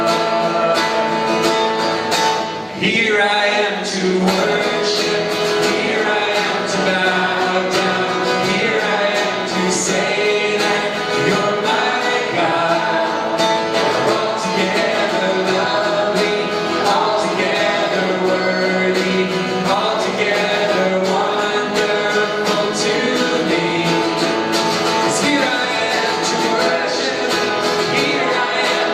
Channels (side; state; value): both; identical; correlation 1.00